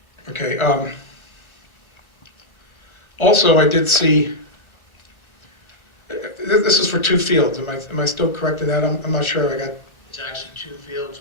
Okay, also, I did see, this is for 2 fields. Am I still correct in that? I'm not sure. I got, It's actually 2 fields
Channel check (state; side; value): late; right; 1.3 ms